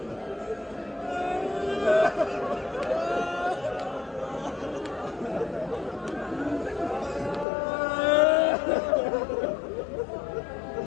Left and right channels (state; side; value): drops out; right; at 7.5 s